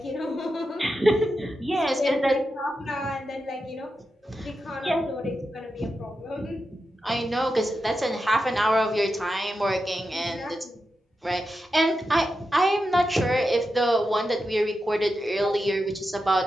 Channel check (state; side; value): normal; both; correlation 0.89